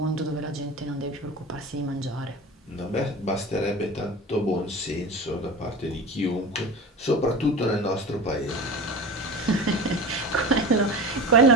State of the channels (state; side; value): normal; both; correlation 0.32